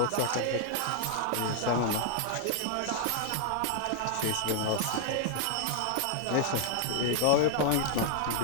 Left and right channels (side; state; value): both; different; correlation -0.01